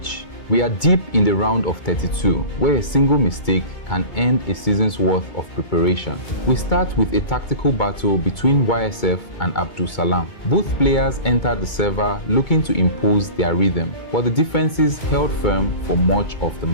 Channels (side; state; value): right; late; 2.2 ms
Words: We are deep in the round of 32, where a single mistake can end a season's worth of preparation. We start with a tactical battle between YSF and Abdul Salam. Both players entered the server looking to impose their rhythm, but the defenses held firm for much of the